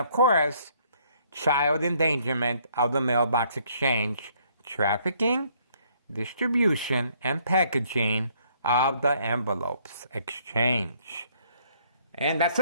course, child endangerment of the mailbox exchange, trafficking, distribution, and packaging of the envelopes exchange. And that's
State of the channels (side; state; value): both; inverted; correlation -0.66